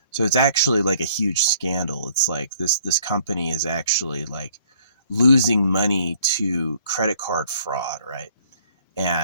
So it's actually like a huge scandal. It's like this company is actually like losing money to credit card fraud, right?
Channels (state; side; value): inverted; both; correlation -0.59